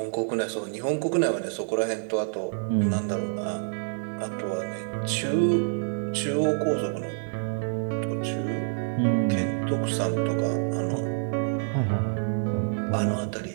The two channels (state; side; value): silent; left; digital silence